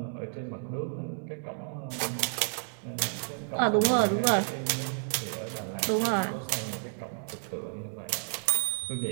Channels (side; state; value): left; silent; 57 dB below the other